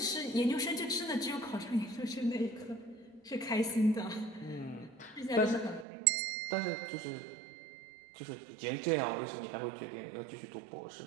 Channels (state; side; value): drops out; left; at 5.9 s